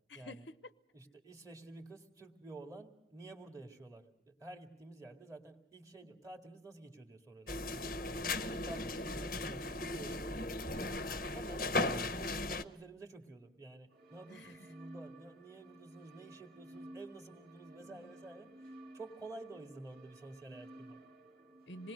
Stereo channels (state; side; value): normal; both; correlation 0.37